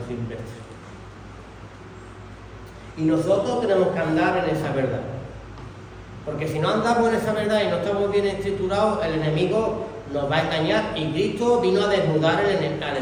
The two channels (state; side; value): identical; both; correlation 1.00